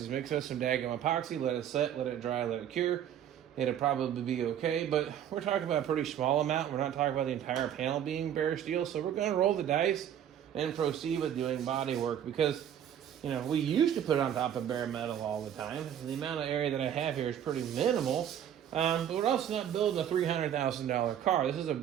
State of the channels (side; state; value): left; quieter; 9.9 dB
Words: Mix us some daggum epoxy, let it set, let it dry, let it cure. It'll probably be okay, but we're talking about a pretty small amount. We're not talking about the entire panel being bare steel, so we're going to roll the dice and proceed with doing body work because, you know, we used to put it on top of bare metal all the time. The amount of area that I have here is pretty minimal. But we're also not building a $300,000 car. This is a